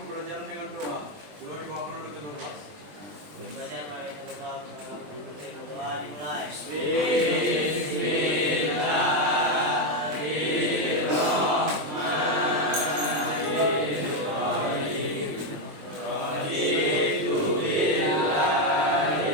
dengan doa. Doa dibawakan oleh ketua kelas. Pembelajaran oleh ketua doa dimulai.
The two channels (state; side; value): late; left; 20 ms